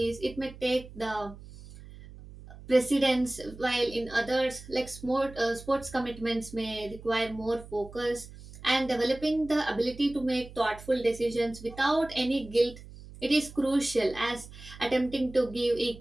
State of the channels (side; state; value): right; noise; hum, 17 dB below the sound